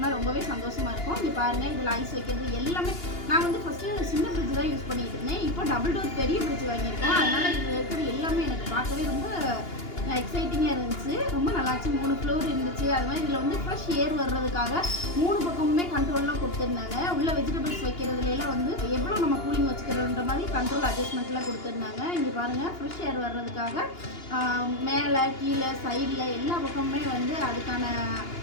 ரொம்பவே சந்தோஷமாக இருக்கும். இங்கே பாருங்கள், இதில் ஐஸ் வைக்கிறது எல்லாமே. நான் வந்து ஃபஸ்ட்டு சின்ன ஃப்ரிட்ஜ் தான் யூஸ் பண்ணிகிட்டு இருந்தேன். இப்போ டபுள் டோர் பெரிய ஃப்ரிட்ஜ் வாங்கியிருக்கோம். அதனால் இதில் இருக்கிறது எல்லாமே எனக்கு பார்க்கவே ரொம்ப எக்ஸைட்டிங்காக இருந்துச்சு. ரொம்ப நல்லாச்சு. 3 ஃப்ளோர் இருந்துச்சு. அது மாதிரி இதில் வந்து ஃப்ரெஷ் ஏர் வர்றதுக்காக 3 பக்கமுமே கண்ட்ரோல்லாம் கொடுத்துருந்தாங்க. உள்ள வெஜிடபிள்ஸ் வைக்கிறதுலாம் வந்து எவ்வளோ நம்ம கூலிங் வச்சுக்கிறோன்ற மாதிரி கண்ட்ரோல் அட்ஜஸ்ட்மெண்ட்லாம் கொடுத்துருந்தாங்க. இங்கே பாருங்கள், ஃப்ரெஷ் ஏர் வர்றதுக்காக மேலே கீழே சைடில் எல்லா பக்கமுமே வந்து அதுக்கான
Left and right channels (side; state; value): right; late; 2.8 ms